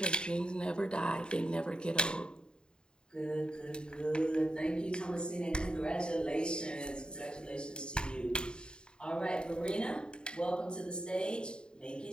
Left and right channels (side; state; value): right; late; 0.049 ms